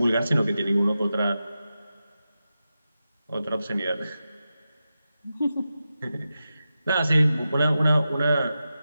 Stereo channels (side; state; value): both; inverted; correlation -0.91